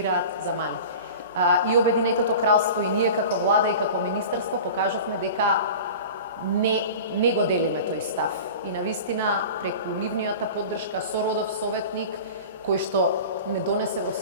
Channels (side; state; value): both; inverted; correlation -0.36